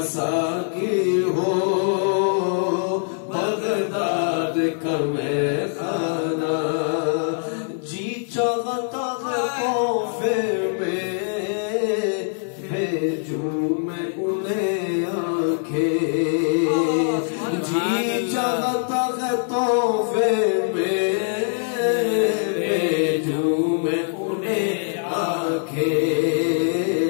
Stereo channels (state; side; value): silent; right; digital silence